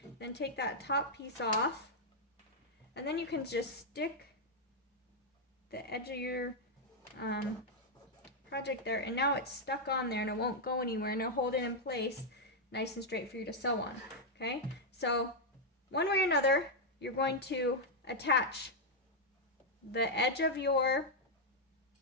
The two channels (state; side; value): normal; both; correlation -0.02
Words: then take that top piece off, and then you can just stick the edge of your project there, and now it's stuck on there and it won't go anywhere, and it'll hold it in place nice and straight for you to sew on. Okay, so one way or another, you're going to attach the edge of your,